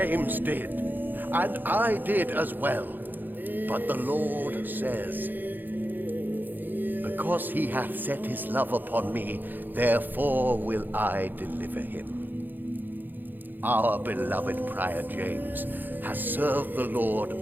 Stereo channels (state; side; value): late; left; 0.089 ms